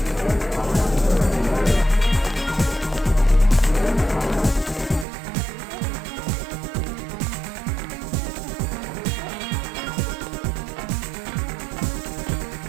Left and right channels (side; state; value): left; drops out; at 5.1 s